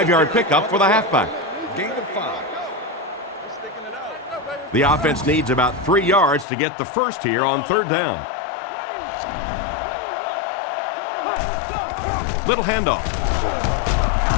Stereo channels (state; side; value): drops out; right; at 6.5 s